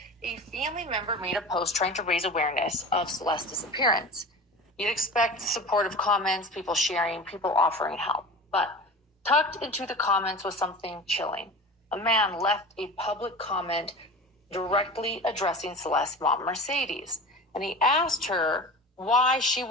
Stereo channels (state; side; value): normal; both; correlation 0.34